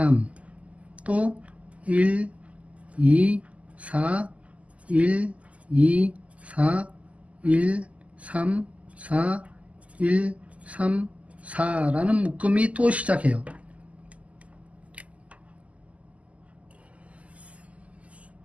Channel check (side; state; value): left; late; 0.068 ms